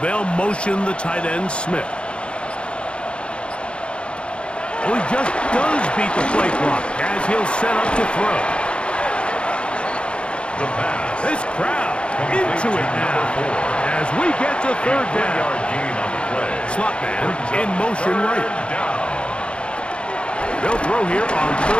They'll motion the tight end, Smith. Oh, he just does beat the play clock as he'll set up to throw. The pass. This crowd into it now as we get to 3rd down. 1-yard gain on the play. Slot man in motion right. Down. They'll throw here on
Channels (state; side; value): late; right; 0.057 ms